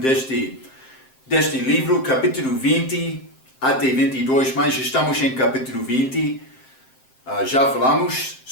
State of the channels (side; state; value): right; late; 7.7 ms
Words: deste livro, capítulo 20 até 22, mas estamos em capítulo 20. Já falamos